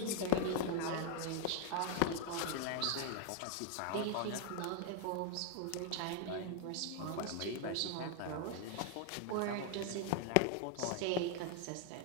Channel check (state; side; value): different; both; correlation 0.00